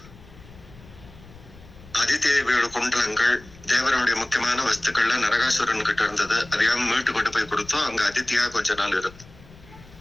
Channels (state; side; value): noise; left; rumble, 21 dB below the sound